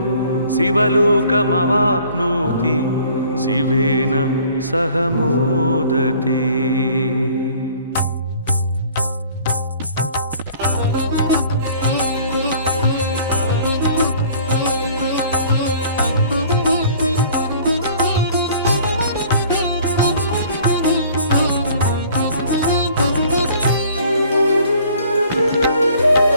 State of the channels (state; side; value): inverted; both; correlation -0.53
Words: शिवलोकमवाप्नोति शिवेन सह मोदते।